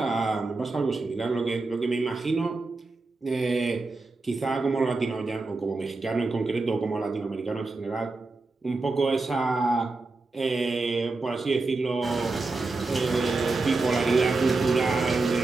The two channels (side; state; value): left; quieter; 3.5 dB